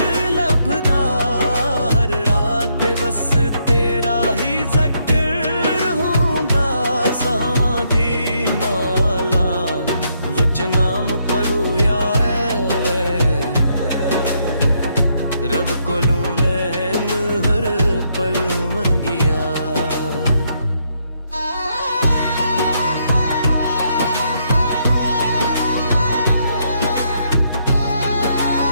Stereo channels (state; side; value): inverted; both; correlation -0.75